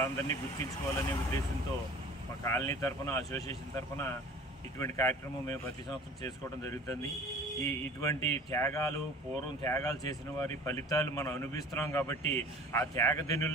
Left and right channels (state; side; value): normal; both; correlation 0.44